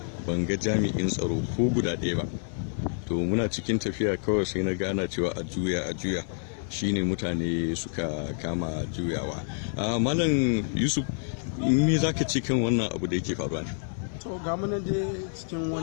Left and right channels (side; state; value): right; silent; digital silence